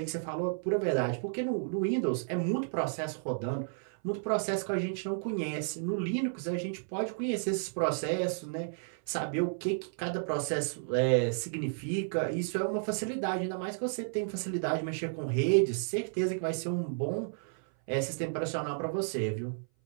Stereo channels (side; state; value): left; silent; 56 dB below the other